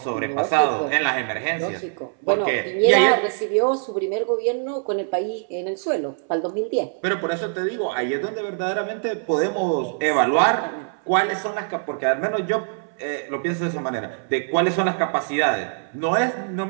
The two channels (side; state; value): left; silent; 61 dB below the other